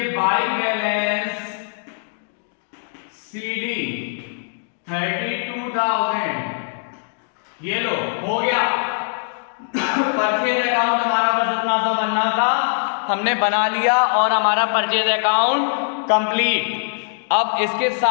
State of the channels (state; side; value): silent; right; digital silence